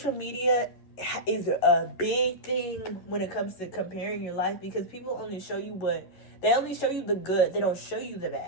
media is a big thing when it comes to comparing your life, because people only show you they only show you the good. They don't show you the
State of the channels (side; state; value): right; late; 11 ms